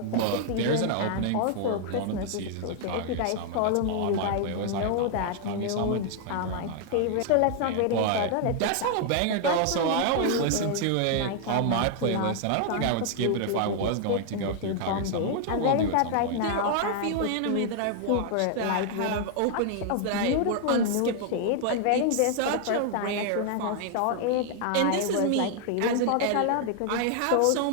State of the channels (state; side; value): different; both; correlation 0.00